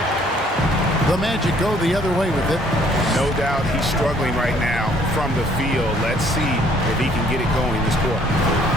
The Magic go the other way with it. No doubt he's struggling right now from the field. Let's see if he can get it going this quarter.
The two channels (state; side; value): normal; both; correlation 0.61